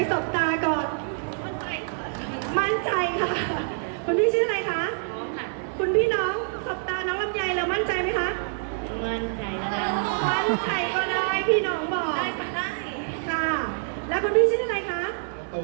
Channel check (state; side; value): silent; left; 61 dB below the other